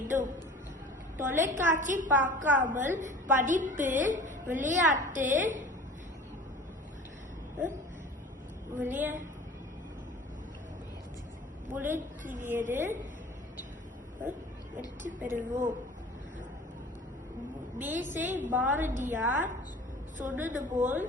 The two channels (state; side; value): normal; both; correlation 0.43